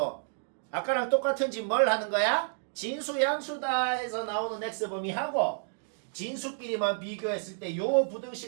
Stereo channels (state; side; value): silent; left; digital silence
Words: 아까랑 똑같은 짓 뭘 하는 거야? 진수 양수다 해서 나오는 X 범위하고 진수끼리만 비교했을 때 요